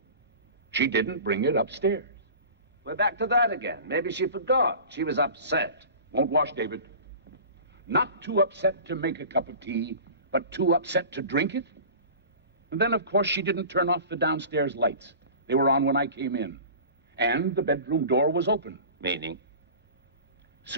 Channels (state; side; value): inverted; both; correlation -0.38